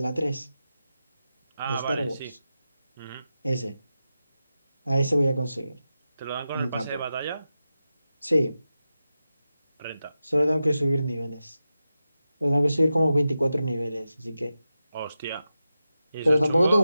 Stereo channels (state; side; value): inverted; both; correlation -0.91